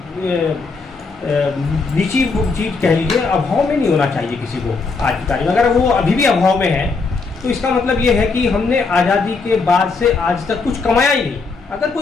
नीची चीज कह लीजिए, अभाव में नहीं होना चाहिए किसी को आज की तारीख में। अगर वो अभी भी अभाव में है, तो इसका मतलब ये है कि हमने आज़ादी के बाद से आज तक कुछ कमाया ही नहीं। अगर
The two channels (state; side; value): quieter; right; 4.3 dB